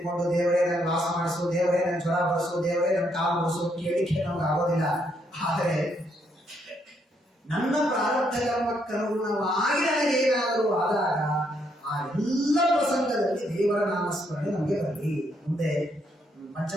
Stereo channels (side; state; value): both; normal; correlation 0.74